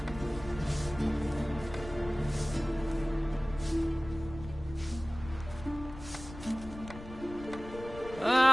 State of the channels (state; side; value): noise; left; rumble, 14 dB below the sound